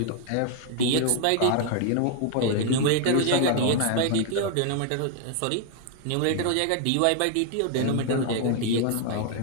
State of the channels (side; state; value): both; different; correlation 0.00